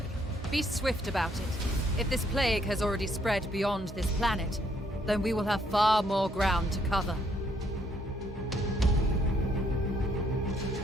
Be swift about it. If this plague has already spread beyond this planet, then we will have far more ground to cover.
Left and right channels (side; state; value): both; normal; correlation 0.69